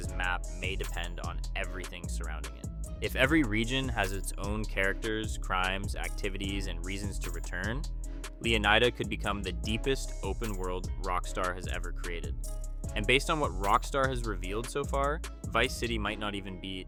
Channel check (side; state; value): both; identical; correlation 1.00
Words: map may depend on everything surrounding it. If every region has its own characters, crimes, activities, and reasons to return, Leonida could become the deepest open world Rockstar has ever created. And based on what Rockstar has revealed so far, Vice City might not even be